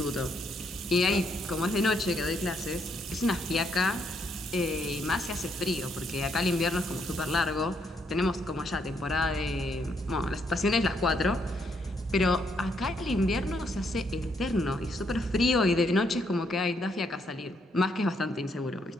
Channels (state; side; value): normal; both; correlation 0.74